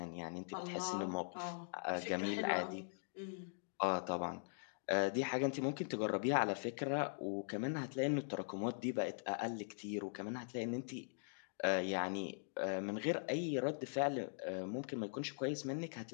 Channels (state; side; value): silent; right; digital silence